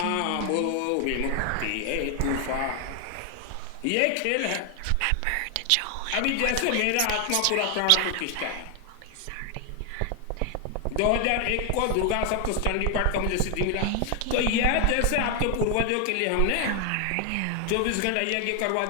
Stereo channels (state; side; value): different; both; correlation 0.00